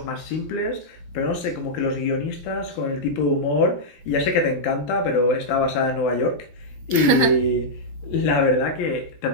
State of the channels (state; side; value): late; right; 12 ms